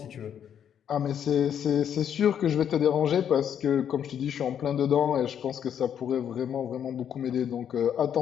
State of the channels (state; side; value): quieter; right; 8.9 dB